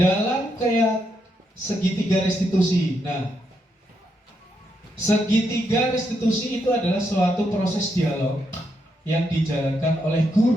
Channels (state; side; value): normal; both; correlation 0.80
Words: kayak segitiga restitusi. Nah, segitiga restitusi itu adalah suatu proses dialog yang dijalankan oleh